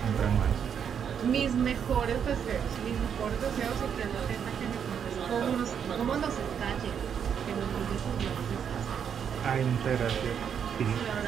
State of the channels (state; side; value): quieter; left; 7.8 dB